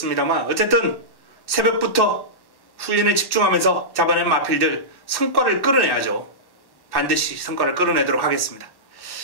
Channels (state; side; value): late; right; 1.1 ms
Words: 어쨌든 새벽부터 훈련에 집중하면서 잡아낸 마필들 성과를 끌어내야죠. 반드시 성과를 끌어내도록 하겠습니다.